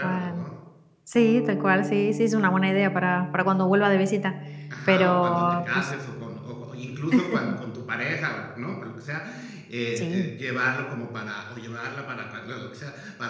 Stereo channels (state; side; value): identical; both; correlation 1.00